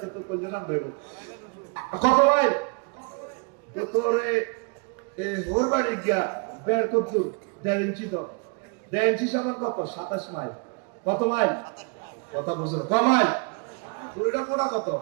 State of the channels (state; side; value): quieter; left; 34.4 dB